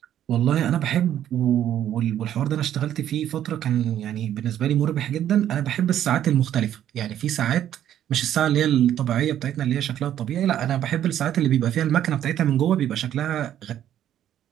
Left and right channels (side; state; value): left; quieter; 11.0 dB